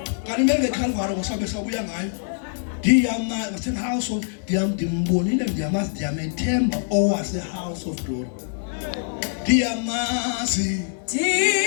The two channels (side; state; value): right; silent; digital silence